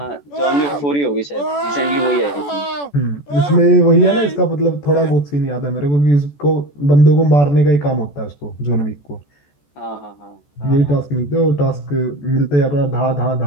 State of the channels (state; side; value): late; right; 14 ms